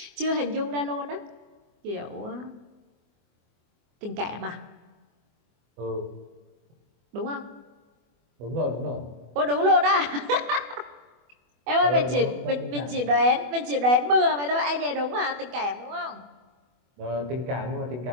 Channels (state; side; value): late; left; 24 ms